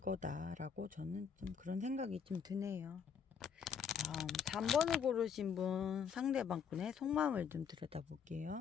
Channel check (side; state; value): right; quieter; 7.1 dB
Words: 저는 좀 그런 생각이 좀 드네요. 다음 3번을 고르신 분 상대방 분의 속마음을 좀